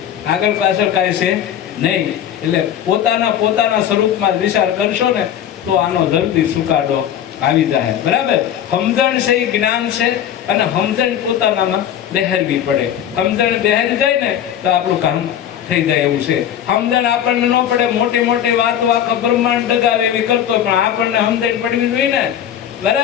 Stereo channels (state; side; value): quieter; right; 10.1 dB